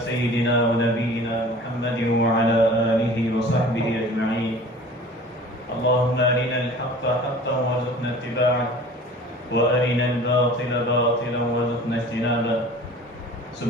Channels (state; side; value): normal; both; correlation 0.44